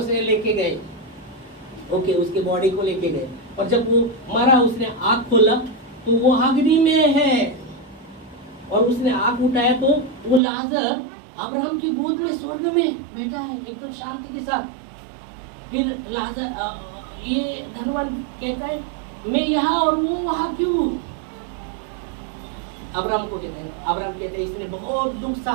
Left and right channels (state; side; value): drops out; left; at 10.4 s